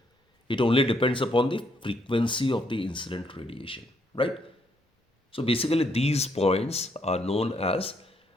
It only depends upon the frequency of the incident radiation, right? So basically these points are known as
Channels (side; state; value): both; normal; correlation 0.73